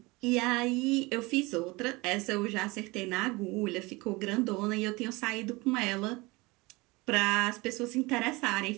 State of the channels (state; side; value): quieter; left; 23.8 dB